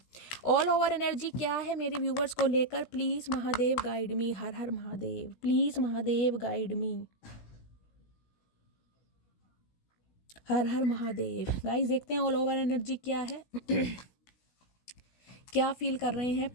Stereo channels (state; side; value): late; right; 17 ms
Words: all over energy क्या है मेरे व्यूवर्स को लेकर, please Mahadev guide me. Her her Mahadev, please Mahadev guide me. Her her Mahadev. Guys देखते हैं ऑल ओवर एनर्जी क्या है क्या फील कर रहे हैं,